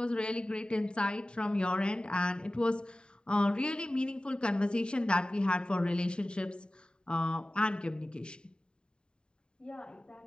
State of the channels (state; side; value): late; right; 0.049 ms